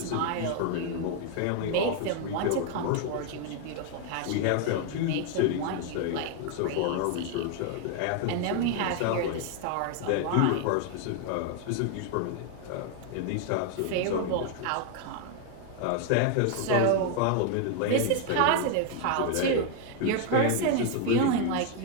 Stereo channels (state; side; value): different; both; correlation 0.01